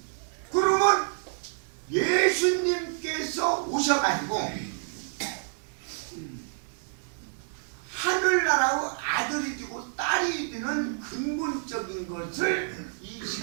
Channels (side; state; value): left; silent; digital silence